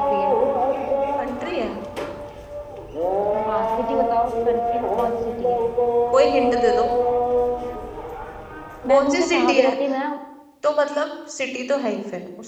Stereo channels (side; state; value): both; identical; correlation 1.00